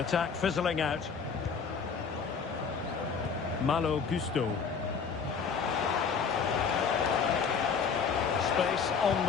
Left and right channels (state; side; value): quieter; right; 6.0 dB